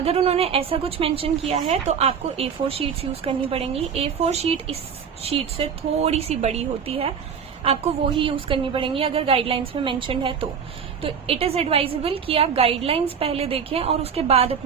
उन्होंने ऐसा कुछ मेंशन किया है तो आपको A4 शीट्स यूज करनी पड़ेंगी। A4 शीट इस शीट से थोड़ी सी बड़ी होती है, आपको वो ही यूज करनी पड़ेंगी अगर गाइडलाइंस में मेंशन्ड है तो इट इज एडवाइजेबल कि आप गाइडलाइंस पहले देखें और उसके बाद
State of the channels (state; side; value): quieter; left; 7.0 dB